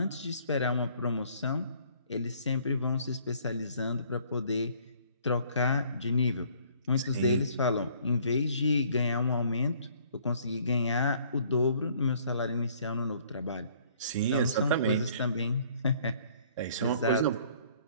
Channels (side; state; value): both; inverted; correlation -0.59